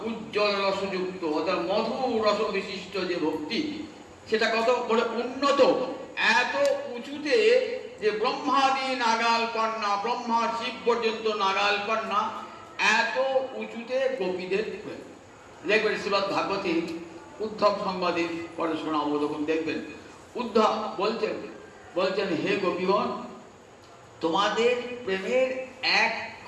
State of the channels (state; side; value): identical; both; correlation 1.00